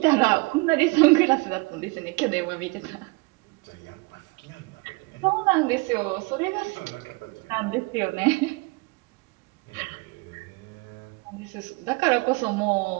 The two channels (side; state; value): left; quieter; 27.3 dB